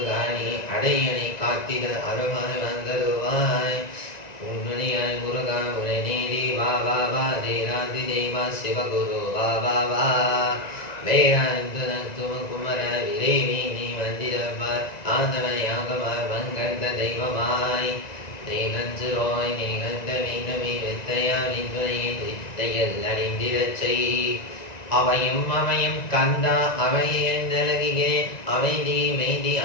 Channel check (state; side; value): late; right; 1.9 ms